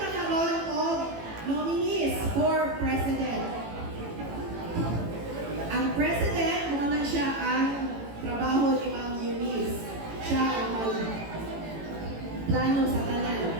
of nominees for president. Ang president, muna siya ang trabaho ni Ma'am Eunice. Siya ang plano sa tanan.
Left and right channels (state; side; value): late; left; 18 ms